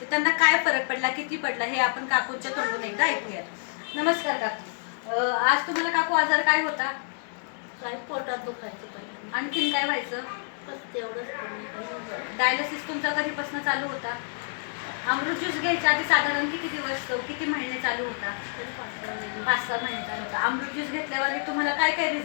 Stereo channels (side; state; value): right; silent; digital silence